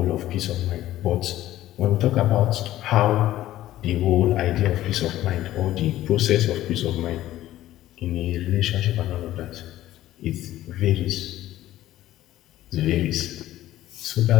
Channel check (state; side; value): quieter; right; 14.2 dB